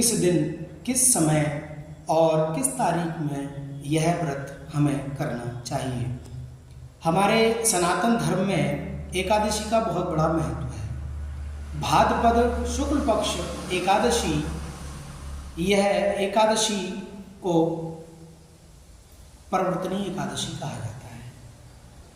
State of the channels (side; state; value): both; identical; correlation 1.00